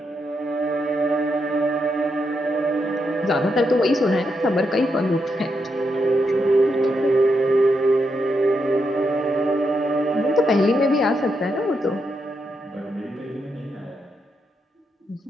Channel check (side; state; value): both; normal; correlation 0.82